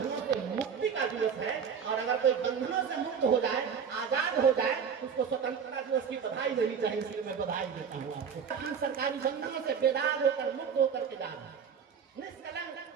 से मुक्ति का दिवस है, और अगर कोई बंधनों से मुक्त हो जाए, आजाद हो जाए, उसको स्वतंत्रता दिवस की बधाई देनी चाहिए। इसलिए मैं बधाई देता हूँ आपको। हम सरकारी बंधनों से बेदाग होकर, मुक्त होकर के जा रहे हैं, निष्कलंक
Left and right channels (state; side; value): quieter; left; 6.9 dB